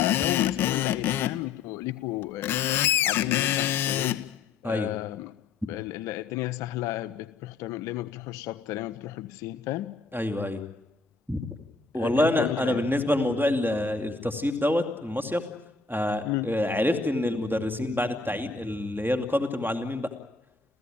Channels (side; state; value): right; quieter; 4.5 dB